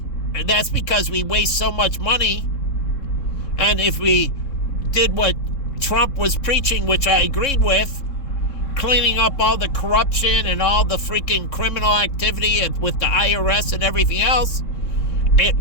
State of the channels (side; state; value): right; late; 3.6 ms